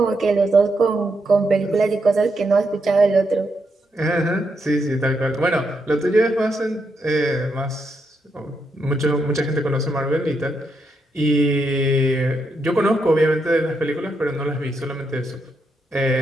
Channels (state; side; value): normal; both; correlation 0.81